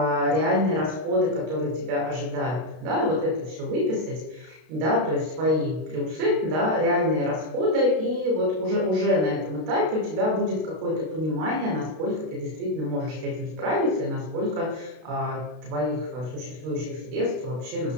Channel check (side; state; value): left; late; 32 ms